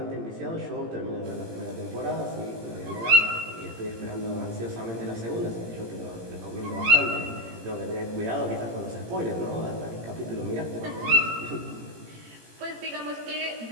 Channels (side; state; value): left; late; 18 ms